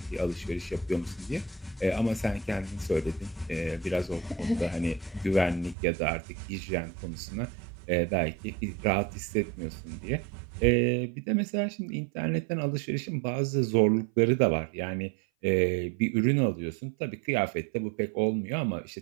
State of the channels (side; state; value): left; drops out; at 5.8 s